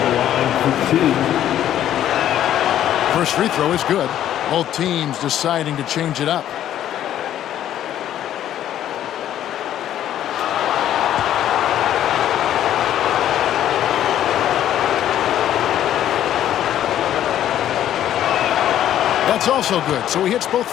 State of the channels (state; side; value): quieter; right; 11.5 dB